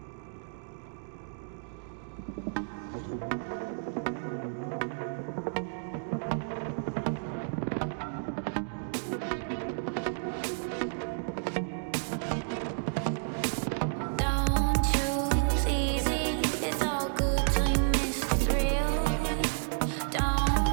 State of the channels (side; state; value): left; silent; digital silence